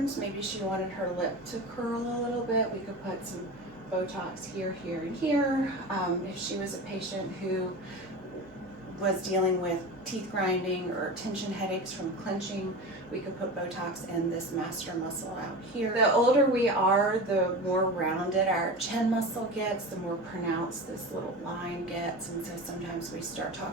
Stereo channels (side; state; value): both; normal; correlation 0.29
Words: maybe she wanted her lip to curl a little bit, we could put some Botox here, here, and here. If she was a patient who was dealing with teeth grinding or tension headaches from clenching, we could put Botox in this master muscle out here. The older we are, the more rounded our chin muscle gets, the more pronounced this little line gets, and so sometimes we start